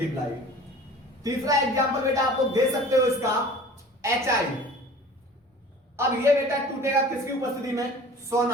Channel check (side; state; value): both; normal; correlation 0.44